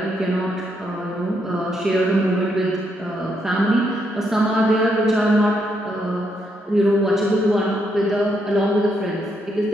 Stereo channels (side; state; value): both; normal; correlation 0.77